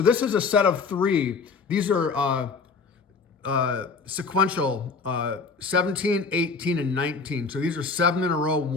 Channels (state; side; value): quieter; right; 4.7 dB